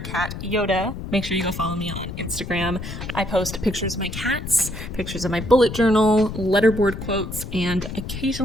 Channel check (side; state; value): left; noise; rumble, 8 dB below the sound